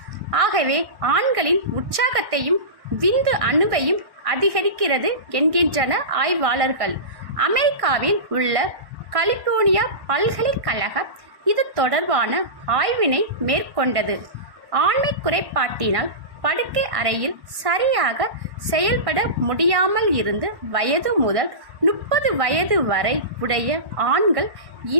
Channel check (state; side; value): late; left; 1.1 ms